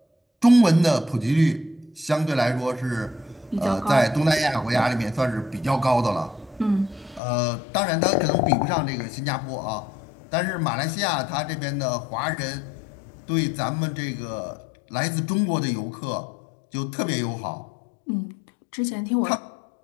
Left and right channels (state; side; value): drops out; right; at 7.2 s